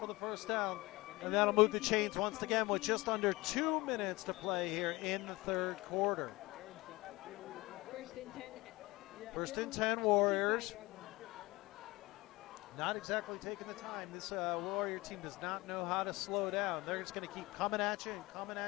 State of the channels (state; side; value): quieter; right; 21.6 dB